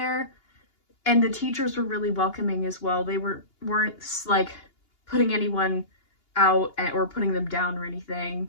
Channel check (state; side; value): late; right; 2.8 ms